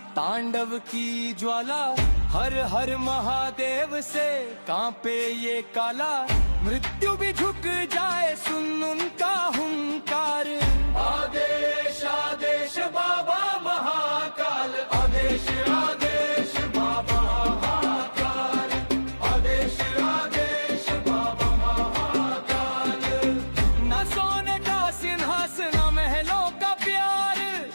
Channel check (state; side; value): inverted; both; correlation -1.00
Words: तांडव की ज्वाला। हर हर महादेव से कांपे ये काला। मृत्यु भी झुक जाए सुन उनका हुंकार, आदेश आदेश बाबा महाकाल। आदेश आदेश बाबा महाकाल, आदेश आदेश बाबा महाकाल। न सोने का सिंहासन, न महलों का प्यार,